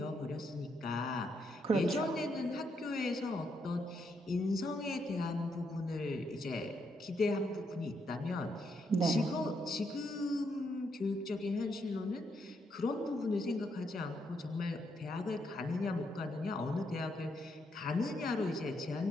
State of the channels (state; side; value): normal; both; correlation 0.77